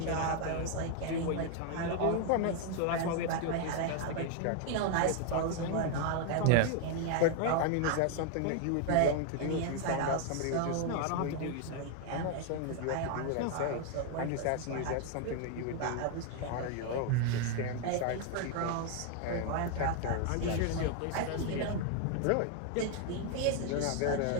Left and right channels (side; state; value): both; different; correlation 0.00